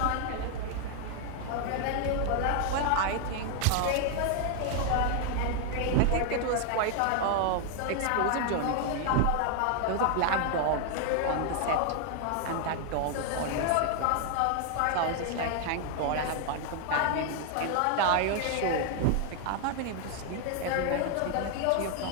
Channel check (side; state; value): both; different; correlation 0.00